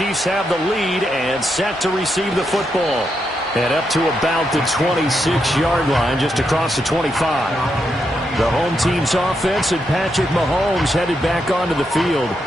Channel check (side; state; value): both; normal; correlation 0.82